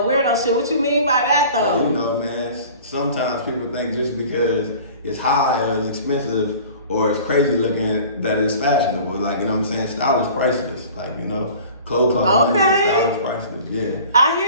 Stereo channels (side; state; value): both; inverted; correlation -0.44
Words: weirdo shit. What you mean by that though? You know, man, sometimes people think just because it's high or it's expensive or it's crazy looking that it's fashionable. Like, you know what I'm saying? Style is priceless. Like, you know, clothes cost money, style is priceless. Yeah. I